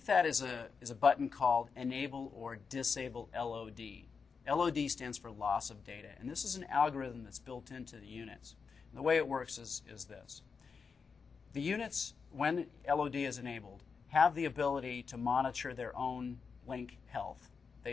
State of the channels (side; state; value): right; quieter; 5.5 dB